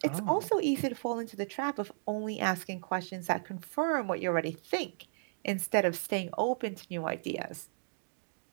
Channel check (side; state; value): left; silent; digital silence